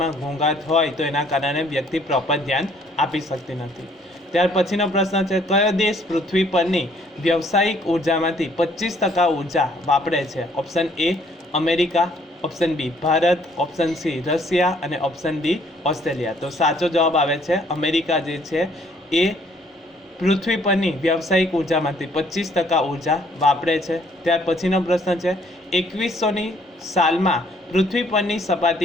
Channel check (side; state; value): both; normal; correlation 0.63